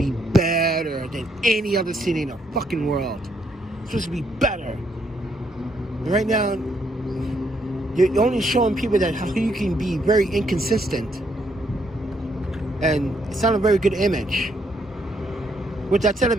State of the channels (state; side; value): normal; both; correlation 0.73